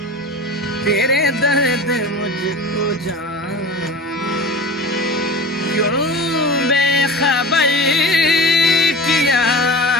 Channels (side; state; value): both; normal; correlation 0.34